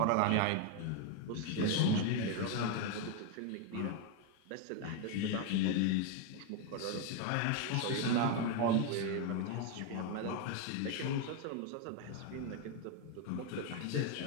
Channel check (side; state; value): both; different; correlation 0.01